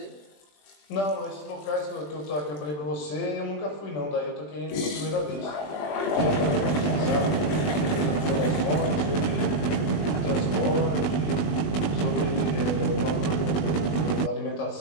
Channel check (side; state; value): right; late; 20 ms